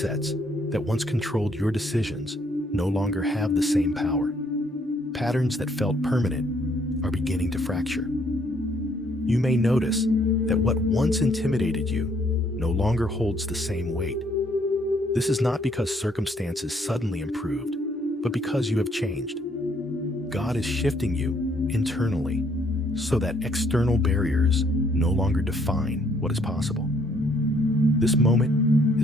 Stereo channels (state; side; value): normal; both; correlation 0.67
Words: that once controlled your decisions no longer have the same power. Patterns that felt permanent are beginning to fracture. You may notice that what once intimidated you no longer holds the same weight. This is not because circumstances suddenly improved, but because you have changed. God is shifting you internally so that external barriers no longer define what is possible. This moment